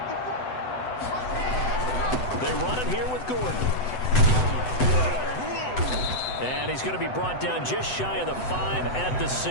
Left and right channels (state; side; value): late; right; 7.9 ms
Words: They run it here with Gordon. And he's going to be brought down just shy of the 5 at the